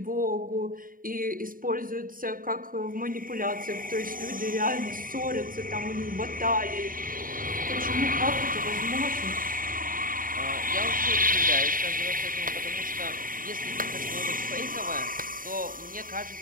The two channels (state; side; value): late; left; 0.40 ms